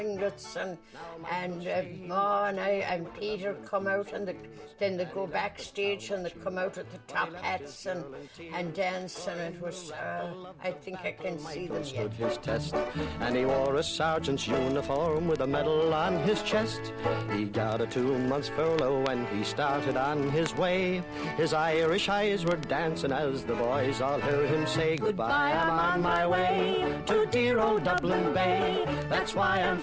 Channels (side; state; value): both; identical; correlation 1.00